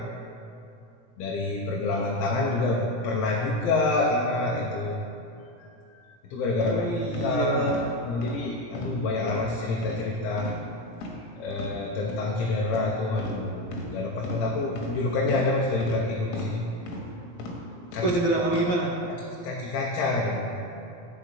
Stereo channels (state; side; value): late; right; 17 ms